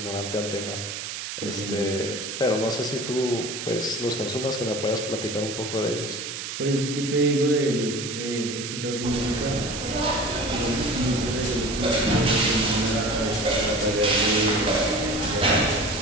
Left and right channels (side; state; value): right; noise; hiss, 6 dB below the sound